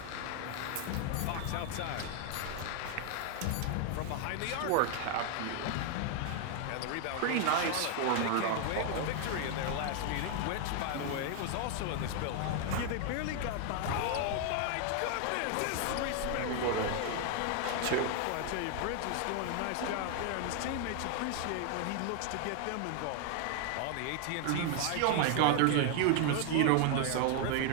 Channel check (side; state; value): both; different; correlation 0.00